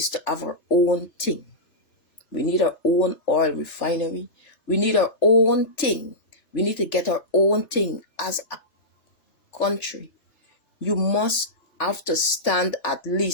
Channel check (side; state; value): right; late; 3.4 ms